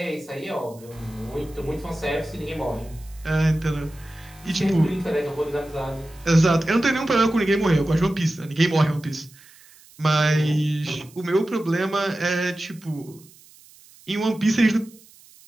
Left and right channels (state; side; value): noise; right; hiss, 25 dB below the sound